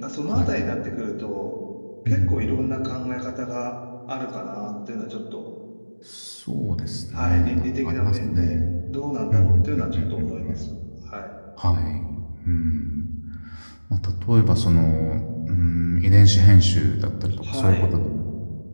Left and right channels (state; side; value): inverted; both; correlation -1.00